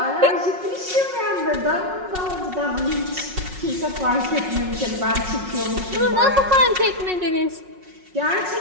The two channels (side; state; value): left; late; 5.4 ms